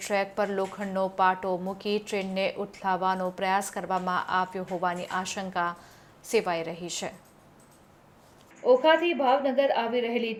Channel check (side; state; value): both; identical; correlation 1.00